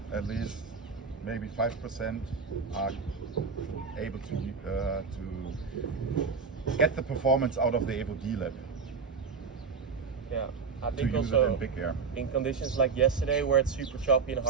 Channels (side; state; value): left; quieter; 5.2 dB